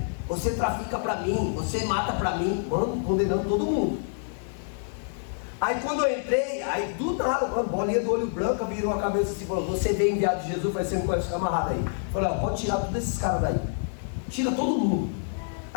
você trafica pra mim, você mata pra mim, mano, condenando todo mundo. Aí quando eu entrei, aí do nada, mano, bolinha do olho branco, virou a cabeça assim, falou, você veio enviado de Jesus, vai ser um camarada aí. Falei, ó, pode tirar todos esses caras daí, tira todo mundo.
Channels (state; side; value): silent; right; 59 dB below the other